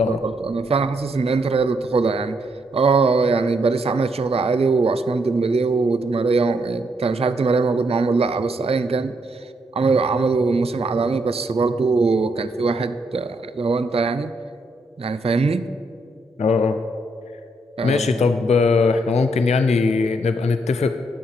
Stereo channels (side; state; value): both; normal; correlation 0.76